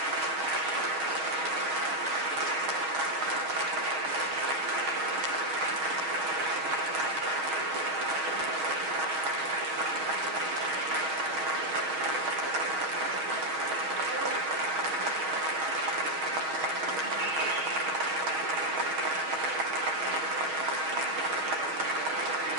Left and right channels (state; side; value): late; left; 6.4 ms